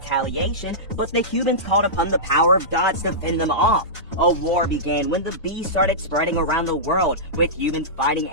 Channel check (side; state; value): both; normal; correlation -0.16